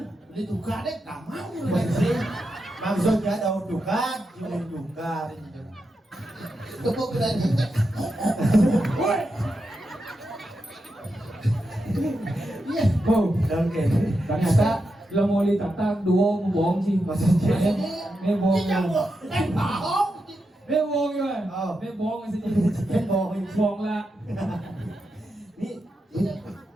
Beli tukar deh, gak mau. Maksudnya tahu dukan, jual dukan. Tepuk berani. Iya. Oh, Dan kayak ternyata lo mau ditatang duo bohong sih. maksudnya. Ini bohong. Tidak bohong. Bohong. Ini bohong ya. Oh. Ini bohong sih. Kan bohong. Bohong lah. Ini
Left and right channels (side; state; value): both; normal; correlation 0.87